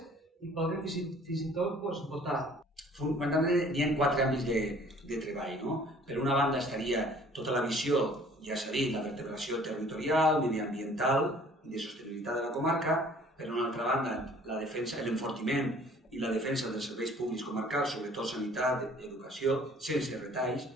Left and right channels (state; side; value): normal; both; correlation 0.54